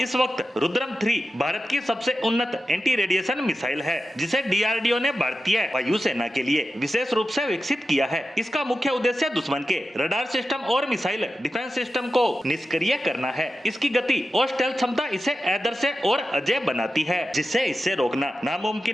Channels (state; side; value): normal; both; correlation 0.92